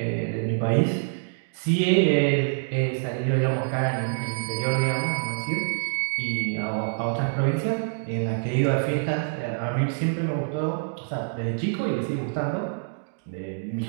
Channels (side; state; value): left; silent; digital silence